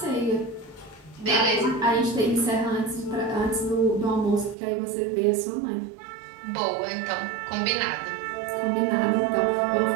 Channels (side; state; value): left; drops out; at 4.5 s